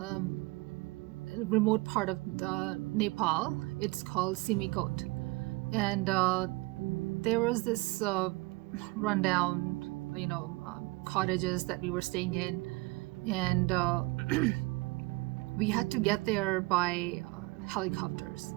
remote part of Nepal. It's called Simikot, and there was this rundown, cottages that we were staying in, and we had to get there by helicopters.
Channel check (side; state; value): left; quieter; 24.0 dB